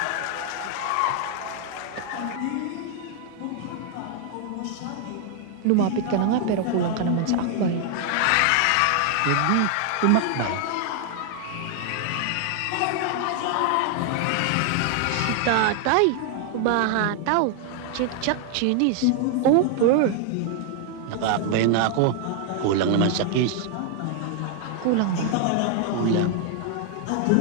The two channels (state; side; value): different; both; correlation 0.00